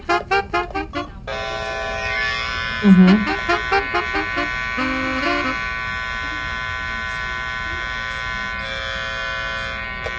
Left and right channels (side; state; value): both; identical; correlation 1.00